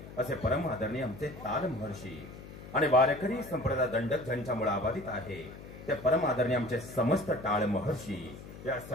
असे परम आदरणीय आमचे ताल महर्षी आणि वारकरी संप्रदाय दंडक ज्यांच्यामुळे आबाधित आहे ते परम आदरणीय आमचे समस्त टाळ महर्षी या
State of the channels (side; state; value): left; noise; hum, 14 dB below the sound